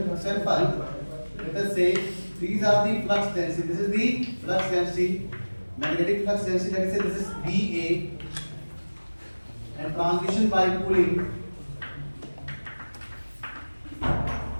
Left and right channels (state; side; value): inverted; both; correlation -1.00